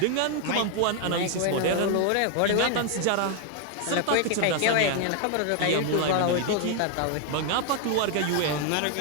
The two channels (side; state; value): both; different; correlation 0.00